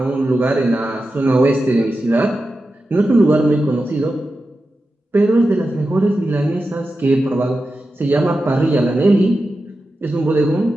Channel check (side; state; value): both; normal; correlation 0.91